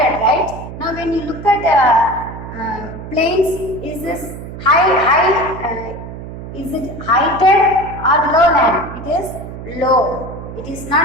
right? Now when you look at plains, is this is it heighted or lowland? It is low. It is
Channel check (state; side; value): noise; right; hum, 11 dB below the sound